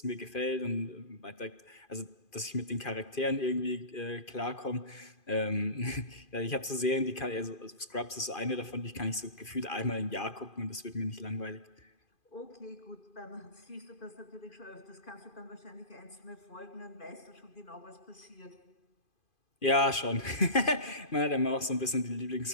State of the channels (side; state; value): right; late; 2.5 ms